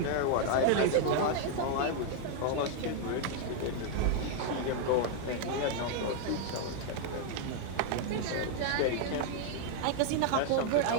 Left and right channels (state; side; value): different; both; correlation 0.00